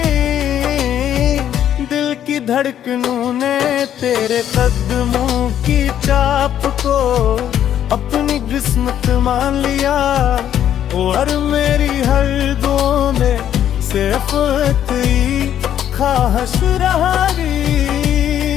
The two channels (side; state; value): right; quieter; 10.4 dB